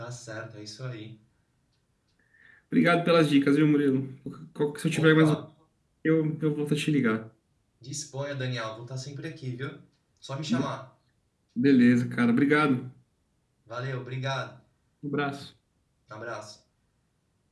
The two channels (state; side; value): identical; both; correlation 1.00